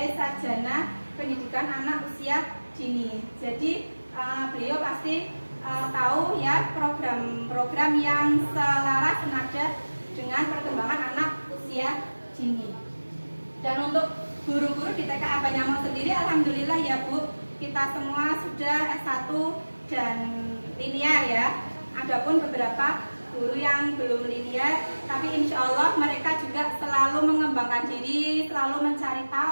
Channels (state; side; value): inverted; both; correlation -1.00